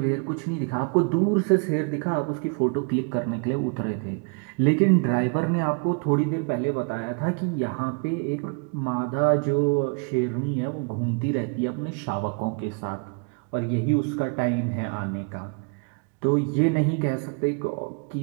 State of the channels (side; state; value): left; quieter; 35.4 dB